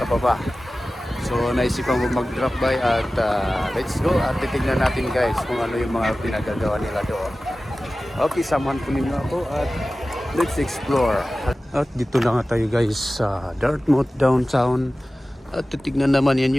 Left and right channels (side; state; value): both; normal; correlation 0.96